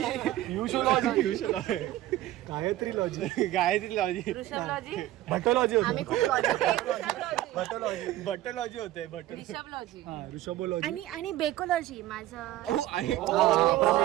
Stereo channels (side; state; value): left; quieter; 14.8 dB